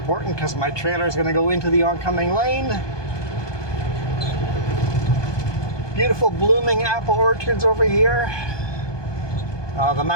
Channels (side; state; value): right; late; 1.2 ms